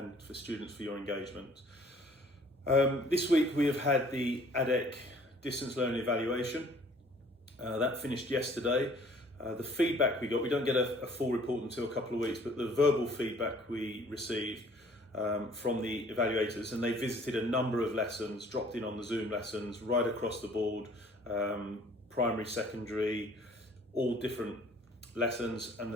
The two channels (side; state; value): both; normal; correlation 0.55